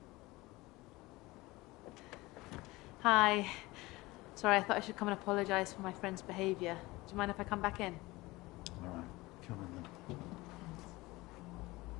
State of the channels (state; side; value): quieter; right; 20.8 dB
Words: Hi. Sorry, I thought I should come and apologise for my friend's behaviour. Do you mind if I come back in? All right, come in then.